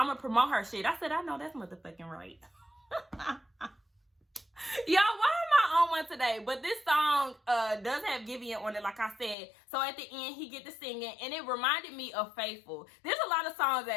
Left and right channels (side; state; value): right; drops out; at 9.3 s